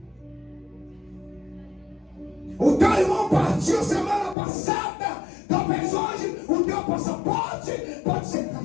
O teu irmão partiu semana passada, talvez hoje o teu passaporte pode ser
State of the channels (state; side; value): drops out; right; at 4.4 s